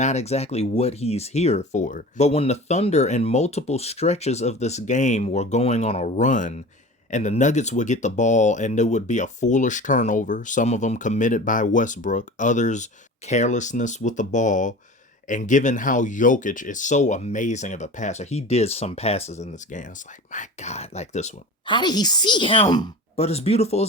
exactly what he's here for. But when the Thunder in multiple stretches of this game were going on a run, and the Nuggets would get the ball and there would be a foolish turnover, some of them committed by Westbrook, others carelessness with the ball. And given how Jokic is so amazing of a passer, he did some passes in this game. It's like, my God, like this one. How did he see him? But as beautiful as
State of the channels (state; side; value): normal; both; correlation 0.36